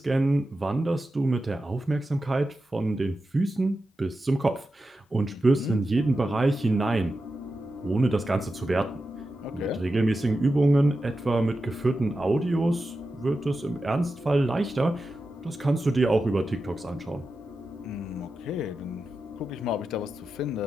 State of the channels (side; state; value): both; normal; correlation 0.91